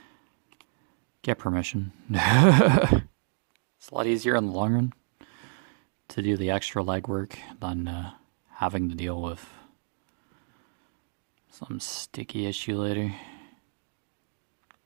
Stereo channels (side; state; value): left; silent; 58 dB below the other